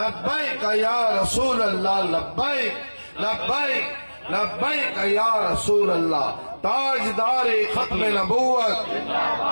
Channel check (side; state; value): both; inverted; correlation -1.00